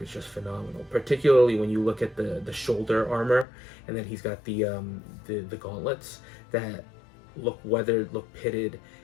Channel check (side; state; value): right; drops out; at 3.5 s